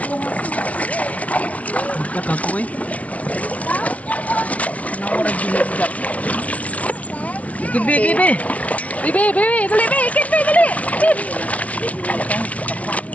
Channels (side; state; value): right; late; 0.067 ms